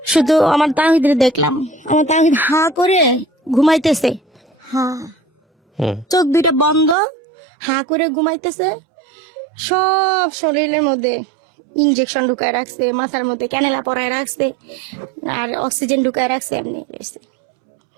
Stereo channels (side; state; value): left; drops out; at 7.0 s